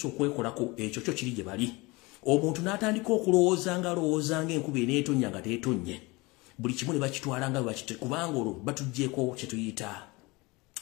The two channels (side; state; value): right; quieter; 24.2 dB